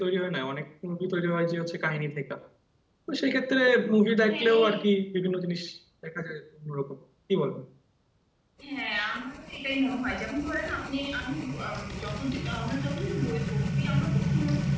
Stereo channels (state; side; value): identical; both; correlation 1.00